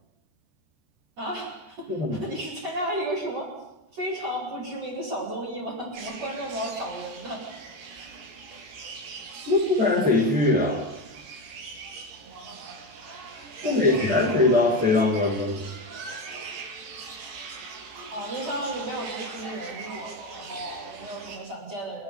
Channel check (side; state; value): left; late; 14 ms